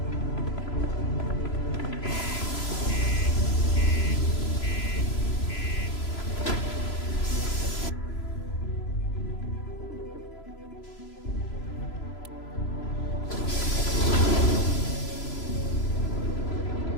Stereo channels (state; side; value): late; right; 3.0 ms